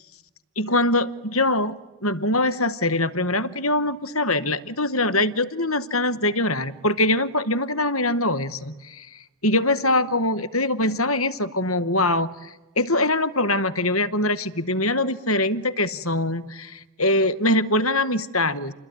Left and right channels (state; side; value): normal; both; correlation -0.17